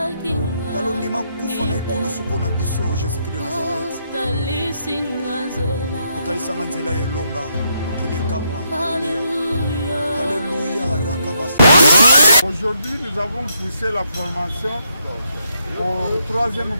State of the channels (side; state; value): both; inverted; correlation -0.77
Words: talondima kufa na ekulusu mpo na biso jésus-christ de nazareth otalisanga nzela elonga mokili ekamwa alléluia rakabasa. Aujourd'hui nous avons poussé la formation au troisième